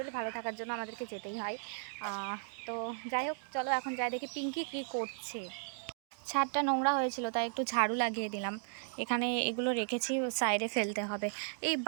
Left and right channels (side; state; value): left; silent; digital silence